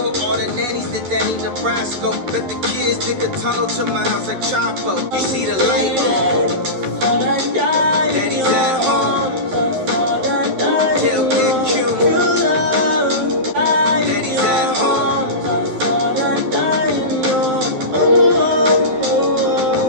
all the nannies that Danny Nebraska. Let the kids dig a tunnel to my house like Chapo. You see the light on. Daddy's at home. Tell Big Q. Daddy's at home.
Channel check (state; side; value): late; left; 11 ms